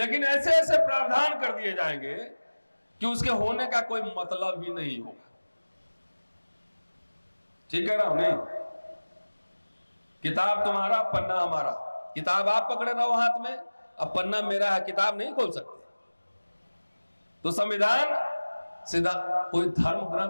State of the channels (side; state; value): both; inverted; correlation -1.00